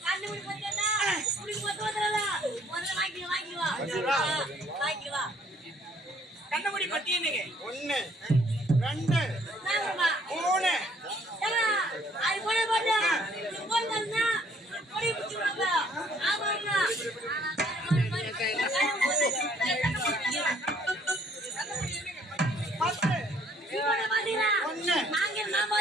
கண்ணு மூடி போட்டேன்னா, உனக்கு மொத்தம் வந்துடாதா? முதல்ல வாங்கிக்குவா. வாங்கிக்குவா. கண்ணமுடி பத்தி என்னங்க 1 2 நாங்கம்மா. 3 தங்கா, அது போட போட்டா, இது போட்டா, பொடி பிடிச்சிருவாங்க. ஆமாண்ணா. ஒண்ணு, நான்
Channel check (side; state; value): both; normal; correlation 0.62